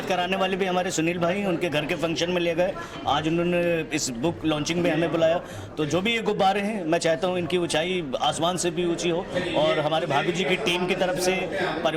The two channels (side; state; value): both; identical; correlation 1.00